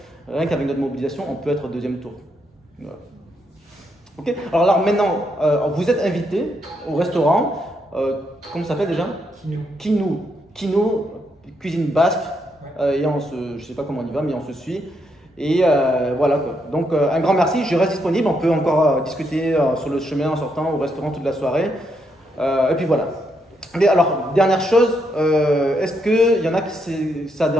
rien qu'avec notre mobilisation, on peut être au deuxième tour. Voilà. Okay. Alors maintenant, vous êtes invité au restaurant, comment ça s'appelle déjà? Kino, cuisine basque, et je ne sais pas comment on y va, mais on se suit. Et voilà quoi. Donc un grand merci, je reste disponible, on peut encore discuter sur le chemin en sortant au restaurant toute la soirée. Et puis voilà. Mais alors, dernière chose, est-ce qu'il y en a qui ça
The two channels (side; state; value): both; normal; correlation 0.78